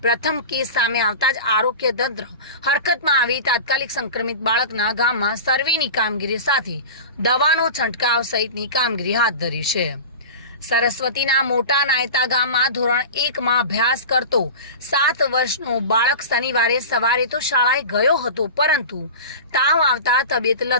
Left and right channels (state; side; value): inverted; both; correlation -0.31